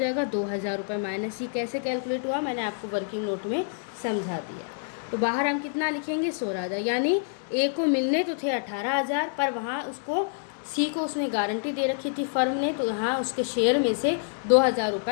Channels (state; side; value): silent; right; 60 dB below the other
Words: 2,000 रुपये माइनस। ये कैसे कैलकुलेट हुआ मैंने आपको वर्किंग नोट में समझा दिया। तो बाहर हम कितना लिखेंगे 16,000, यानी ए को मिलने तो थे 18,000 पर वहाँ उसको सी को उसने गारंटी दे रखी थी फर्म ने, तो यहाँ उसके शेयर में से 2,000